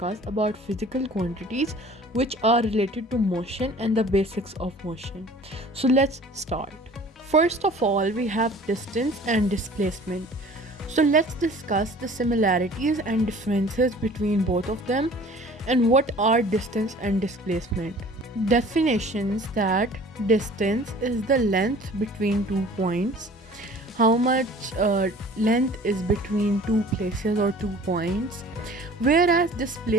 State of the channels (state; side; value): normal; both; correlation 0.48